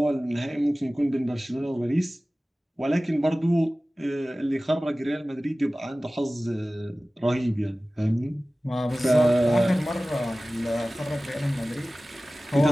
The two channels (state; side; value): normal; both; correlation 0.97